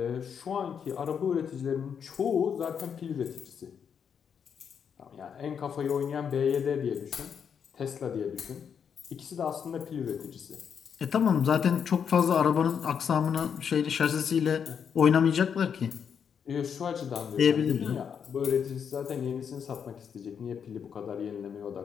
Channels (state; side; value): quieter; right; 7.3 dB